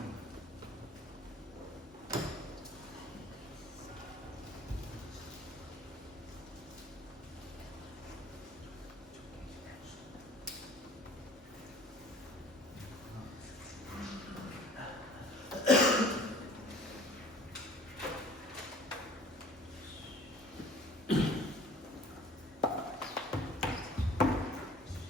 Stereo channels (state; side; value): normal; both; correlation 0.49